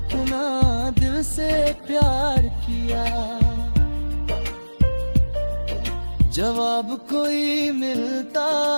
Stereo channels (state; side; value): inverted; both; correlation -1.00